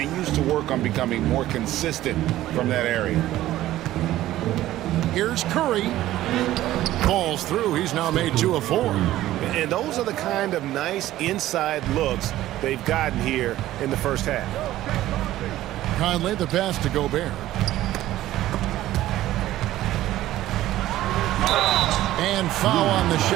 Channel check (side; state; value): left; quieter; 14.6 dB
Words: to work on becoming more consistent from that area. Here's Curry. Falls through. He's now made 2 of 4. And those are the kind of nice inside looks they've gotten here in the first half. Conley, the pass to Gobert. And foul on the